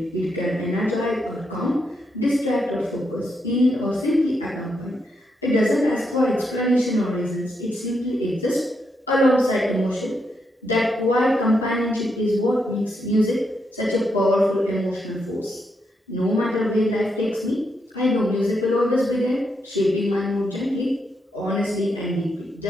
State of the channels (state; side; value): normal; both; correlation 0.80